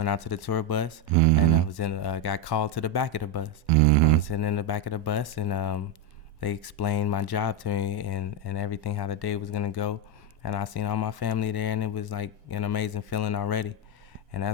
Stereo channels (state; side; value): normal; both; correlation 0.08